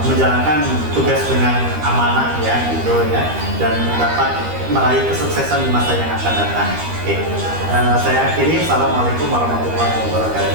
menjalankan tugas dengan amanah ya, gitu ya, dan dapat meraih kesuksesan di masa yang akan datang. Oke, saya akhiri. Assalamualaikum warahmatullahi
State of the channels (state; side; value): late; left; 13 ms